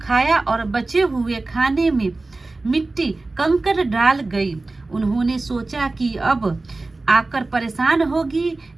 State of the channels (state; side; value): quieter; left; 3.3 dB